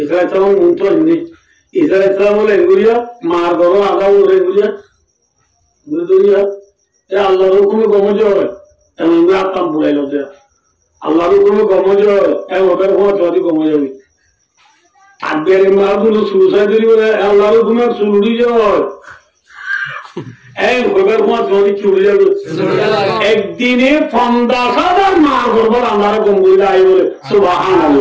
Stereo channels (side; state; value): both; identical; correlation 1.00